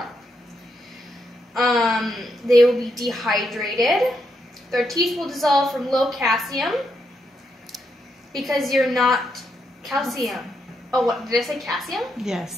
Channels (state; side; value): normal; both; correlation 0.80